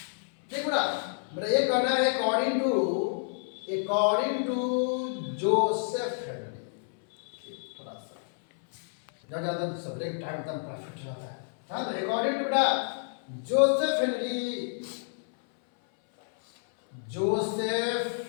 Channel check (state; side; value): silent; right; 57 dB below the other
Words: देख बेटा, मेरा ये कहना है अकॉर्डिंग टू जोसेफ हेनरी जब ज़्यादा सवेरे के टाइम एकदम परफेक्ट रहता है। हाँ, तो अकॉर्डिंग टू बेटा जोसेफ